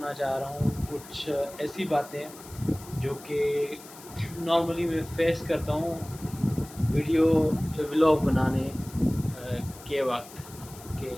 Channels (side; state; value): left; noise; hiss, 18 dB below the sound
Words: चाह रहा हूँ कुछ ऐसी बातें जो कि नॉर्मली मैं फेस करता हूँ वीडियो व्लॉग बनाने के वक्त के